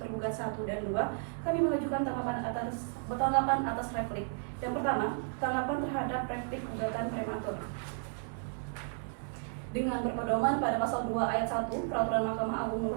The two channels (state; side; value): silent; left; 56 dB below the other